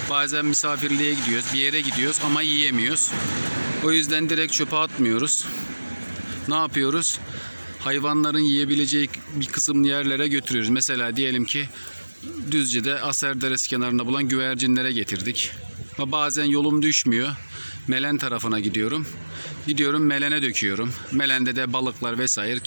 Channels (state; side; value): inverted; both; correlation -1.00